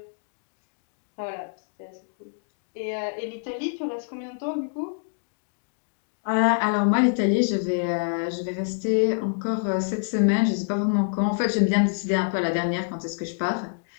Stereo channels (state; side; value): silent; right; digital silence